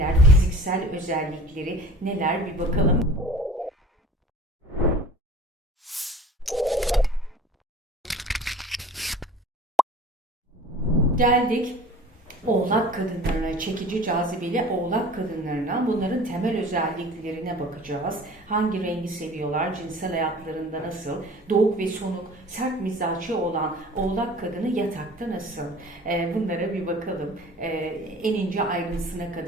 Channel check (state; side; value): normal; both; correlation 0.44